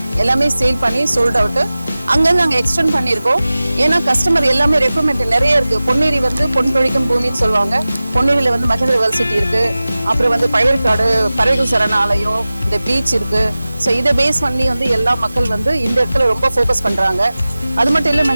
எல்லாமே சேல் பண்ணி சோல்ட் அவுட்டு. அங்கேருந்து நாங்கள் எக்ஸ்டெண்ட் பண்ணியிருக்கோம். ஏன்னா கஸ்டமர் எல்லாமே ரெக்குவயர்மெண்ட் நிறைய இருக்குது. பொன்னேரி வந்து பொன் பொழிக்கும் பூமின்னு சொல்லுவாங்க. பொன்னேரியில் வந்து மகேந்திர வேர்சிட்டி இருக்குது. அப்புறம் வந்து பழையற்காடு பறவைகள் சரணாலயம், இந்த பீச் இருக்குது. ஸோ இதை பேஸ் பண்ணி வந்து எல்லா மக்கள் வந்து இந்த இடத்துல ரொம்ப ஃபோக்கஸ் பண்ணுறாங்க. அது மட்டும் இல்லை,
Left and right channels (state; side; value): inverted; both; correlation -0.97